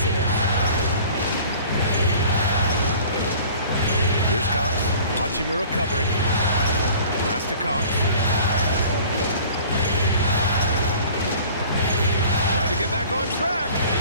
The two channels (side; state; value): both; inverted; correlation -0.47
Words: Here's Cox. Hachimura covering. Pass to Cox. Trying to get back on track.